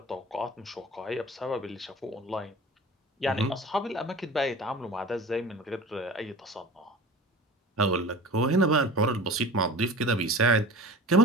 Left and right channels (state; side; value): normal; both; correlation 0.38